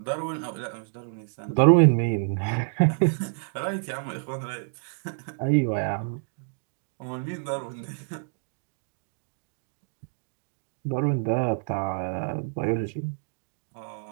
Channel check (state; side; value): silent; left; digital silence